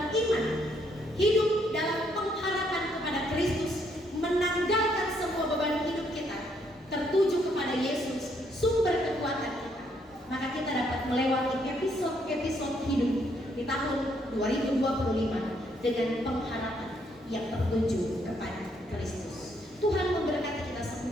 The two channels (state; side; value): normal; both; correlation 0.71